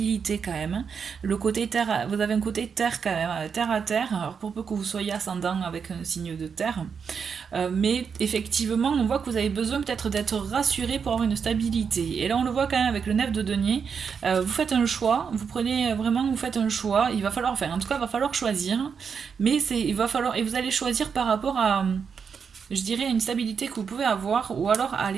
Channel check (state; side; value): quieter; left; 6.4 dB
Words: quand même. Le côté terre, vous avez un côté terre quand même, terre à terre, alors pour peu que vous soyez ascendant avec un signe de terre. Mais effectivement, on voit que vous avez besoin peut-être d'être rassuré pour avoir une stabilité. Et là, on le voit quand même avec le 9 de denier. Vous faites un choix, vous prenez vraiment, vous faites un choix. Il va falloir, enfin, en tout cas, il va falloir choisir. Mais il va falloir, et vous allez choisir par rapport à, je dirais, une stabilité que vous pouvez avoir, ou alors